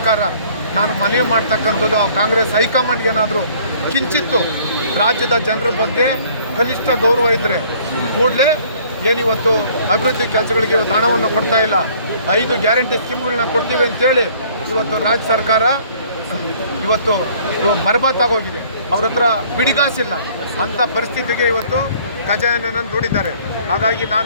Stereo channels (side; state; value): both; inverted; correlation -0.56